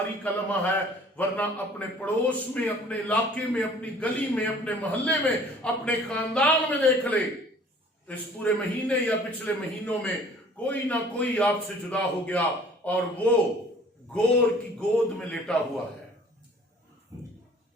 का लम्हा है, वरना अपने पड़ोस में, अपने इलाके में, अपनी गली में, अपने मोहल्ले में, अपने खानदान में देख ले, इस पूरे महीने या पिछले महीनों में कोई ना कोई आपसे जुदा हो गया और वो गोर की गोद में लेटा हुआ है।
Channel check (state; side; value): normal; both; correlation 0.52